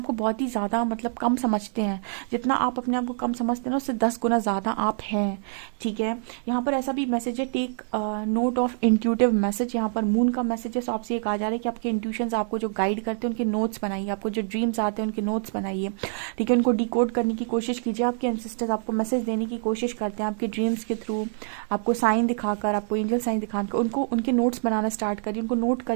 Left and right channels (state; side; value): silent; left; 61 dB below the other